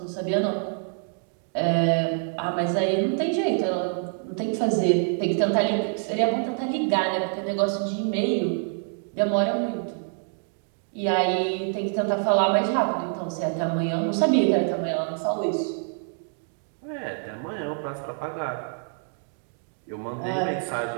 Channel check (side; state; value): left; silent; 57 dB below the other